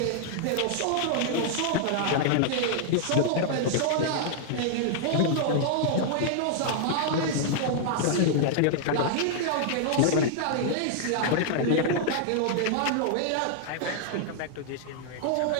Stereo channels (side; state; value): both; different; correlation -0.01